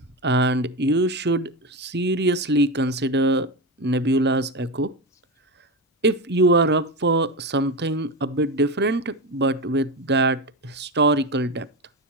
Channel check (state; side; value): normal; both; correlation 0.17